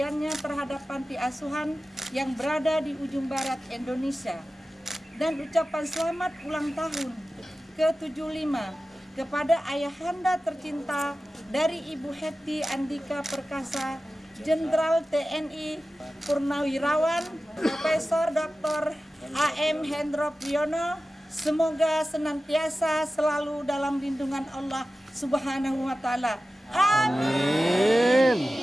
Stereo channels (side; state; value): both; normal; correlation 0.95